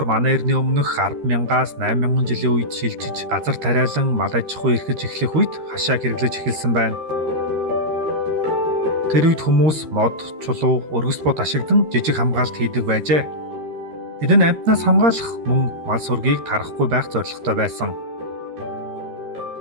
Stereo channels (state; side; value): late; left; 13 ms